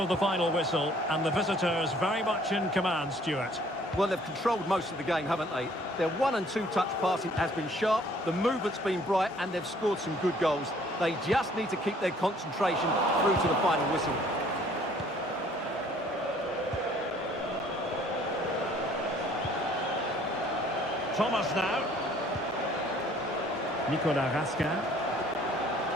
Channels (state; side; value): normal; both; correlation 0.58